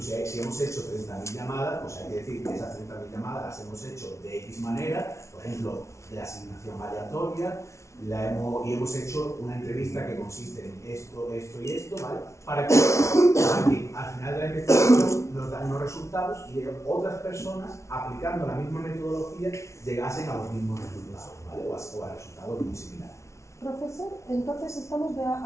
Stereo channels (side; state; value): right; late; 0.14 ms